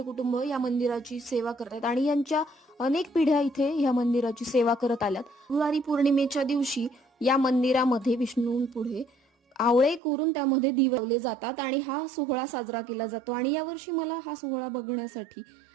कुटुंब या मंदिराची सेवा करतात आणि यांच्या अनेक पिढ्या इथे या मंदिराची सेवा करत आल्यात. त्रिपुरारी पौर्णिमेच्या दिवशी या मंदिरामध्ये विष्णूंपुढे आवळे कोरून त्यामध्ये दिवे लावले जातात आणि हा सोहळा साजरा केला जातो. आणि यावर्षी मला हा सोहळा बघण्यासाठी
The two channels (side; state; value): left; drops out; at 10.0 s